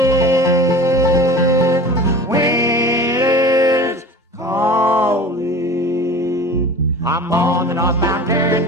winter's calling. I'm on the northbound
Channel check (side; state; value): both; normal; correlation 0.38